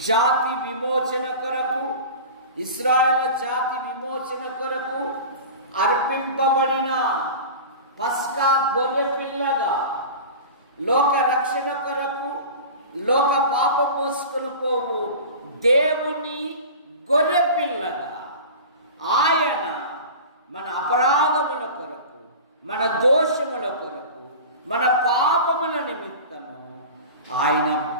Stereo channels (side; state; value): both; inverted; correlation -0.34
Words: జాతి విమోచన కొరకు, ఇశ్రాయేలు జాతి విమోచన కొరకు అర్పింపబడిన పస్కా గొర్రె పిల్లగా, లోక రక్షణ కొరకు లోక పాప మోసుకొని పోవు దేవుని గొర్రె పిల్లగా ఆయన మన అపరాధముల కొరకు, మన దోషముల కొరకు, మన పాపముల నిమిత్తము ఆయన